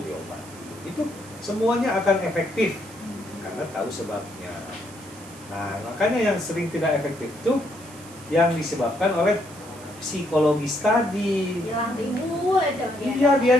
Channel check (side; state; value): right; noise; hiss, 20 dB below the sound